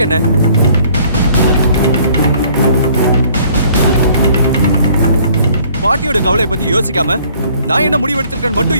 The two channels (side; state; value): both; inverted; correlation -0.58